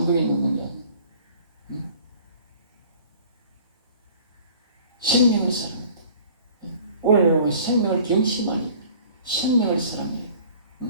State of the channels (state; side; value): inverted; both; correlation -0.50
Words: 있는 게 아니에요. 생명을 사랑한다. 오늘 여러분 생명을 경심하니 생명을 사랑해요.